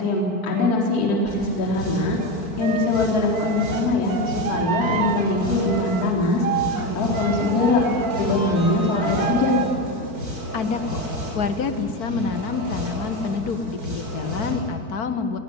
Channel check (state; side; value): late; right; 4.6 ms